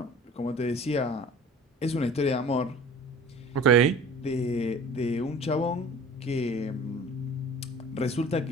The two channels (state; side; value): normal; both; correlation 0.43